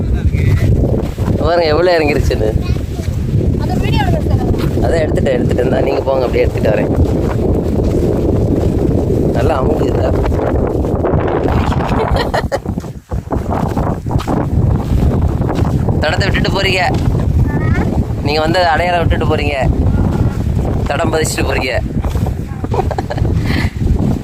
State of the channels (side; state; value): both; identical; correlation 1.00